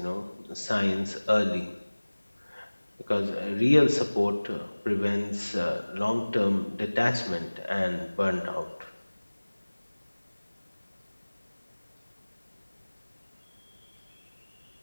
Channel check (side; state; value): both; inverted; correlation -1.00